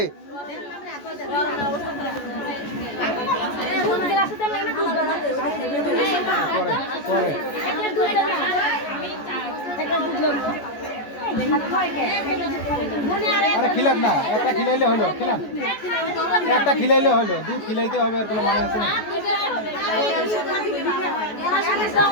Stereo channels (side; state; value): right; late; 14 ms